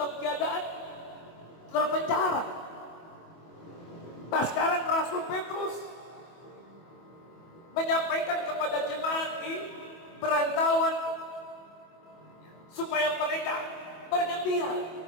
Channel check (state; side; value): late; right; 24 ms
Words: keadaan terpenjara. Nah, sekarang Rasul Petrus menyampaikan kepada jemaat di perantauan supaya mereka bergembira